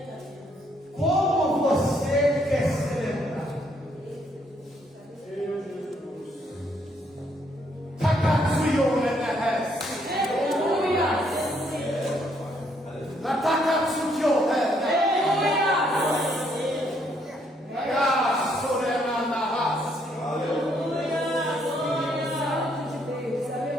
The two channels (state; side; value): normal; both; correlation 0.70